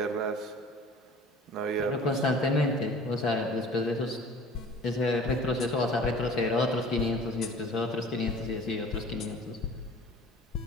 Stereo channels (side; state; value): both; normal; correlation 0.45